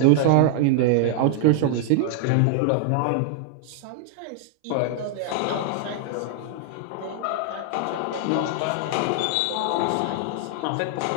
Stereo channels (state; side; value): different; both; correlation 0.00